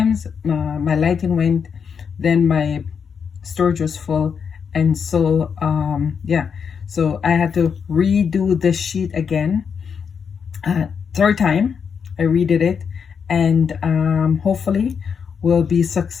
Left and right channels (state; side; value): quieter; right; 6.6 dB